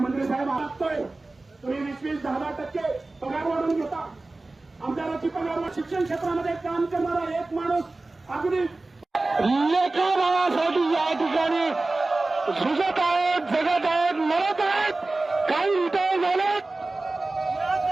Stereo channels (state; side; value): quieter; left; 3.2 dB